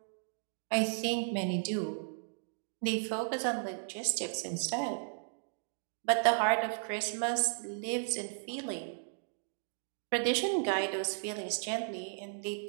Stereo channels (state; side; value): silent; left; digital silence